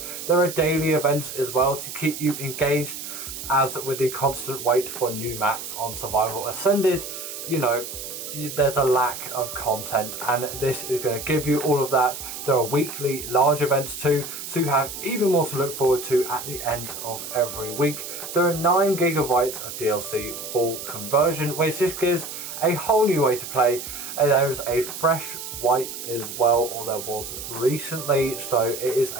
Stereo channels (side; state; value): right; noise; hiss, 9 dB below the sound